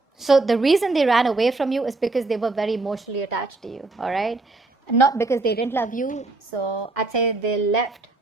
so the reason they ran away from you is because they were very emotionally attached to you. All right, not because they didn't love you. So I'd say they left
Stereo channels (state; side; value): quieter; left; 3.2 dB